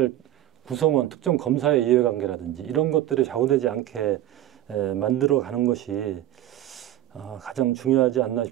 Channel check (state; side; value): quieter; left; 13.3 dB